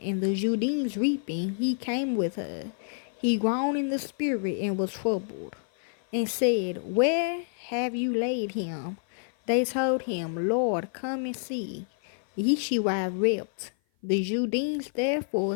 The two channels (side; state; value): right; silent; 55 dB below the other